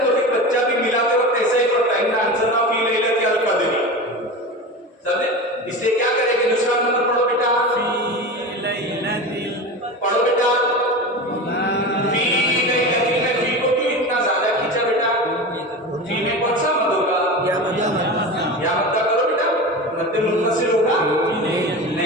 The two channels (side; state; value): both; normal; correlation 0.28